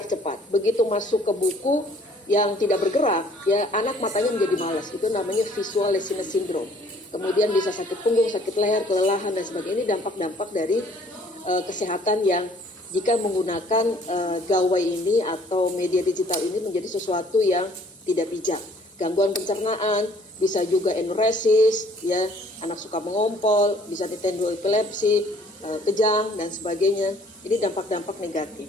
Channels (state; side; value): normal; both; correlation 0.58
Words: cepat, begitu masuk ke buku yang tidak bergerak, ya, anak matanya menjadi malas. Itu namanya visual laziness syndrome. Kemudian bisa sakit punggung, sakit leher, kelelahan, dan sebagainya. Ini dampak-dampak dari kesehatan yang jika menggunakan gawai ini atau media digital ini menjadi sesuatu yang tidak bijak. Gangguan pencernaan, bisa juga enuresis, ya, anak suka mengompol, bisa ditendo epilepsi, kejang, dan sebagainya. Ini dampak-dampak negatif.